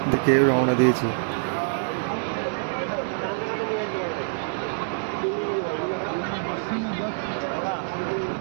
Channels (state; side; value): silent; left; 61 dB below the other